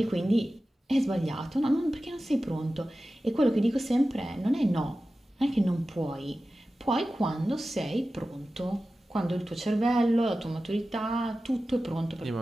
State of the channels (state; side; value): normal; both; correlation 0.94